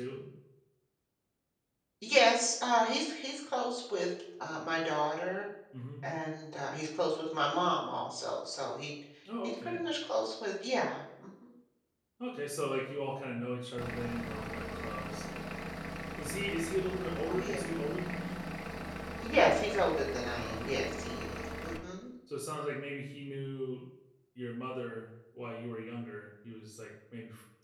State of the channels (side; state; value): both; identical; correlation 1.00